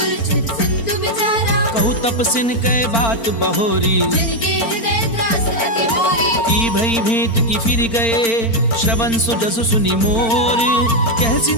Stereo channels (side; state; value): right; late; 4.4 ms